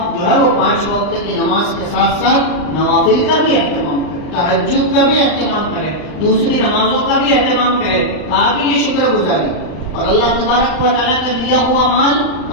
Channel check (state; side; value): late; right; 39 ms